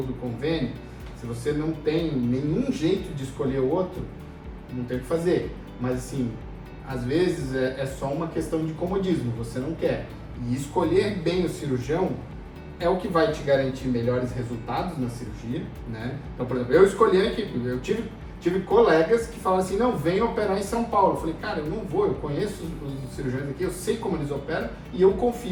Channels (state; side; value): identical; both; correlation 1.00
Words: do convênio. Se você não tem nenhum jeito de escolher outro, não tem o que fazer. Mas assim, às vezes é só uma questão de comodismo, você não quer. E escolher bem o cirurgião é o que vai te garantir melhores resultados na cirurgia, né? Então, por exemplo, eu escolhi a equipe, eu tive colegas que falam assim, não, vem operar em São Paulo. Eu falei, cara, eu não vou, eu conheço os cirurgiões aqui, eu sei como eles operam e eu